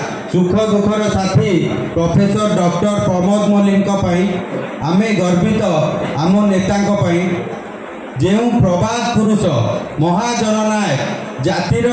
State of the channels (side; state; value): both; identical; correlation 1.00